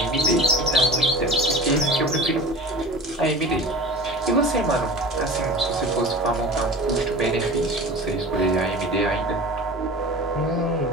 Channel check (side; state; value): both; normal; correlation 0.37